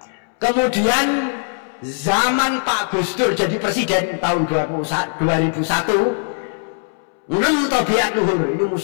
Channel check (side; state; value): right; silent; 65 dB below the other